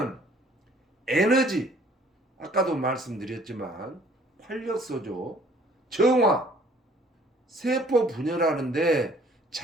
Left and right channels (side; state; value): both; normal; correlation 0.57